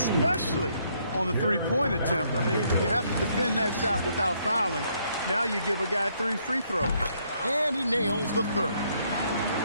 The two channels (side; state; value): both; inverted; correlation -0.71